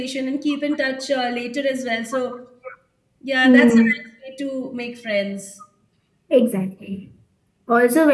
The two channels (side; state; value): both; identical; correlation 1.00